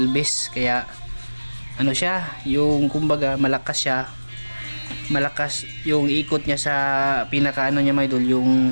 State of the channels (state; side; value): inverted; both; correlation -1.00